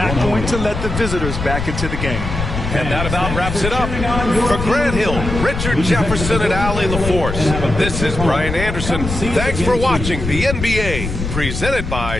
going to let the visitors back into the game. And that about wraps it up. For Grant Hill, Richard Jefferson, and Allie LaForce, this is Brian Anderson. Thanks for watching the NBA, presented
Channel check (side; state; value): left; noise; rumble, 5 dB below the sound